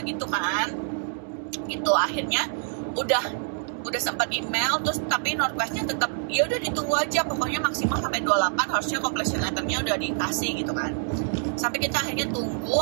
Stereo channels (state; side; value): silent; left; digital silence